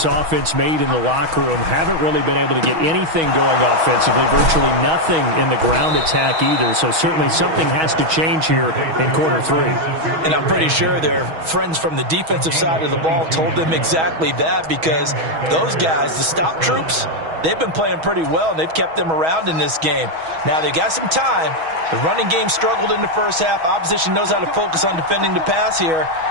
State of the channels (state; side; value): late; left; 6.2 ms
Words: offense made in the locker room. Haven't really been able to get anything going offensively, virtually nothing in the ground attack either. So certainly something has to change here in quarter 3. And I'm pretty sure their friends from the defensive side of the ball told them exactly that, because those guys, the stop troops, they've been playing pretty well, and they've kept them around in this game. Now they've got some time. The running game struggled in the first half. Opposition knows how to focus on defending the pass here.